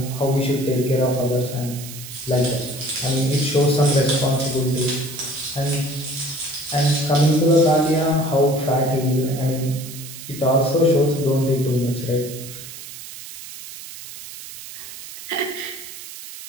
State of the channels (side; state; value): right; noise; hiss, 13 dB below the sound